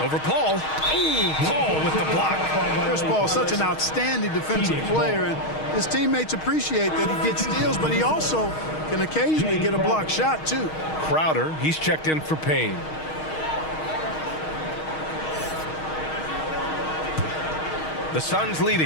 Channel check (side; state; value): right; late; 6.4 ms